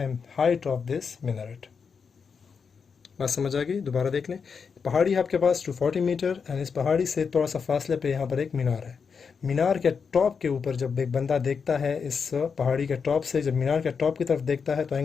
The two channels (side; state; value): right; quieter; 5.9 dB